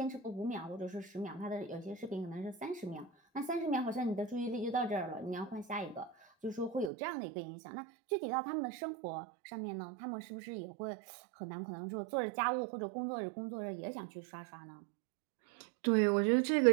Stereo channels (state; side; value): drops out; left; at 6.9 s